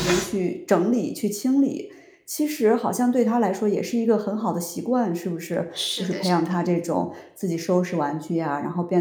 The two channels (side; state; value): both; identical; correlation 1.00